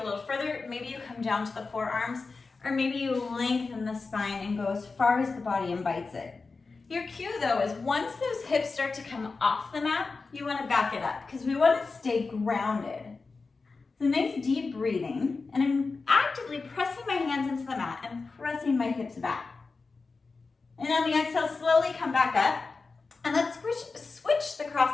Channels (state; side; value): quieter; right; 4.2 dB